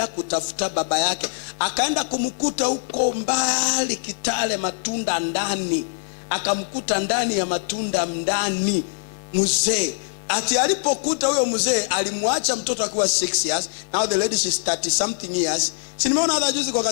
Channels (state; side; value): silent; right; 61 dB below the other